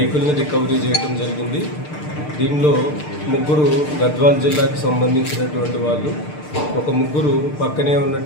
రికవరీ చేయడం జరిగింది. దీనిలో 3 గద్వాల్ జిల్లాకు సంబంధించినటువంటి వాళ్ళు, ఒక 3 పక్కనే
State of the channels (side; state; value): right; late; 6.6 ms